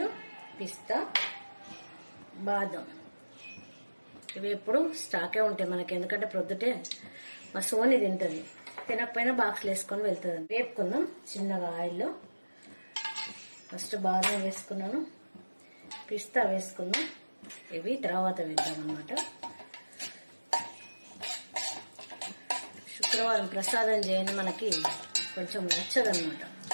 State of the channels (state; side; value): inverted; both; correlation -1.00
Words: పిస్తా, బాదం ఇవి ఎప్పుడు స్టాకే ఉంటాయి మనకి, ఎందుకంటే ప్రొద్దుటే మా సోని తింటుంది, తినకపోయినా బాక్స్లో వేసుకొని వెళ్తుంది. వేపుకుందాం చిన్నగా ఆయిల్లో. ఫస్ట్ బాదం వేసుకున్నాను, పిస్తా వేసుకుందాం, ఇవి తర్వాత వేద్దాం అన్నమాట. శుక్రవారం ప్రసాదం చేయండి మనకి కొంచెం నచ్చదన్నమాట,